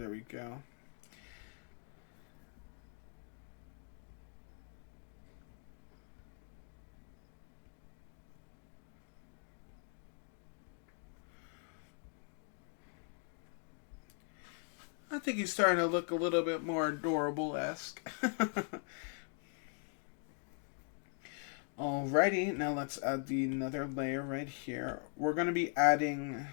we go. I think he's starting to look a little bit more adorable-esque. Alrighty, now let's add another layer right here. We're going to be adding,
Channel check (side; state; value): right; silent; 50 dB below the other